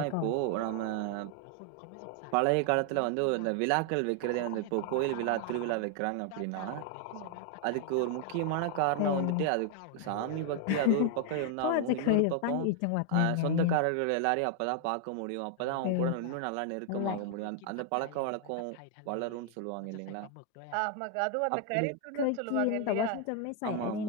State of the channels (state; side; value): different; both; correlation 0.00